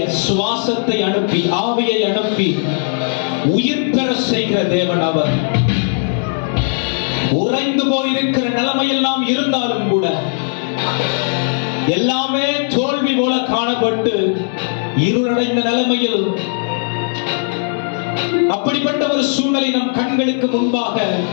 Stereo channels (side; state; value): right; silent; 67 dB below the other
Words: சுவாசத்தை அனுப்பி, ஆவியை அனுப்பி உயிர் பெற செய்கிற தேவன் அவர். உறைந்து போயிருக்கிற நிலைமையில் நாம் இருந்தாலும் கூட எல்லாமே தோல்வி போல காணப்பட்டு இருளடைந்த நிலைமையில் அப்படிப்பட்ட ஒரு சூழ்நிலை நம் கண்களுக்கு முன்பாக